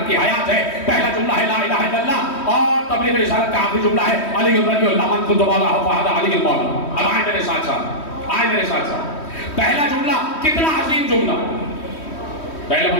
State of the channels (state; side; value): late; right; 3.1 ms